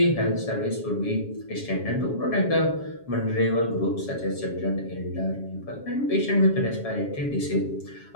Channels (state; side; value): late; right; 7.3 ms